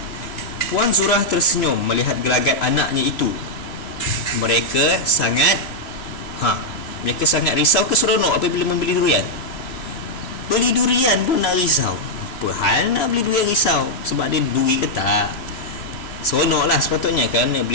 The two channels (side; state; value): right; late; 3.0 ms